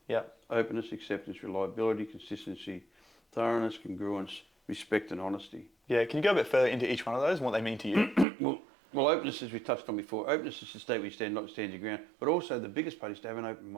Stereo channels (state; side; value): drops out; left; at 8.2 s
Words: Yeah. Openness, acceptance, reliability, consistency, thoroughness, congruence, respect and honesty. Yeah, can you go a bit further into each one of those and what they mean to you? Well, openness, as we touched on before, openness is to stay where you stand, not stand your ground. But also the biggest part is to have an open